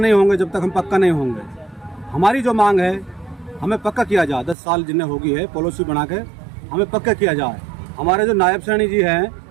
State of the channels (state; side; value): drops out; left; at 4.5 s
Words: होंगे, जब तक हम पक्का नहीं होंगे। हमारी जो मांग है, हमें पक्का किया जाए। 10 साल जिन्हें होगी है पॉलिसी बना के हमें पक्का किया जाए। हमारे जो नायब सैनी जी हैं,